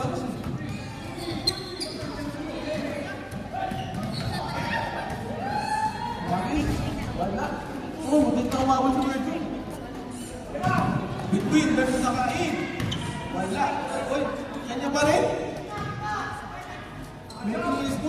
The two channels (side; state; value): both; identical; correlation 1.00